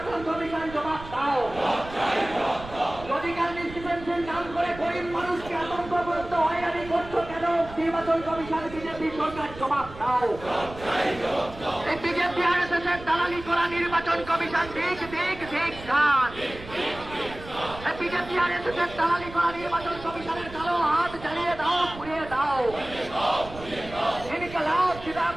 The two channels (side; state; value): right; noise; rumble, 15 dB below the sound